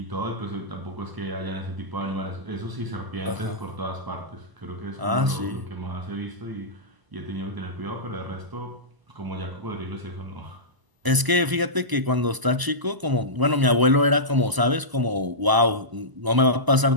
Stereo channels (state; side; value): late; left; 1.0 ms